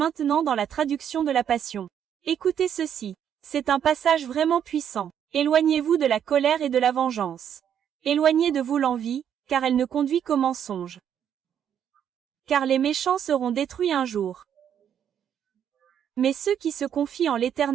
dans la traduction de la Passion. Écoutez ceci. C'est un passage vraiment puissant. Éloignez-vous de la colère et de la vengeance. Éloignez de vous l'envie, car elle ne conduit qu'au mensonge. Car les méchants seront détruits un jour. Mais ceux qui se confient en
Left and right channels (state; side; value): quieter; left; 9.0 dB